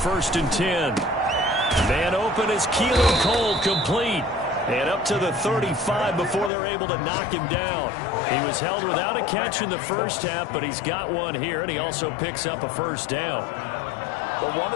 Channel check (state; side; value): drops out; right; at 6.5 s